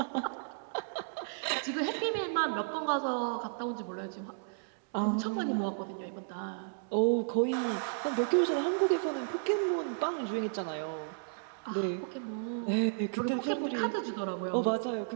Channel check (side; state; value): left; silent; digital silence